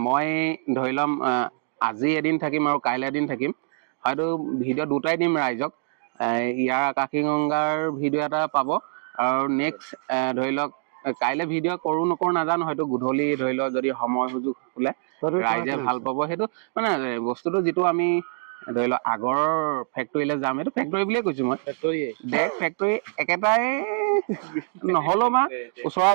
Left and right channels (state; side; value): silent; left; digital silence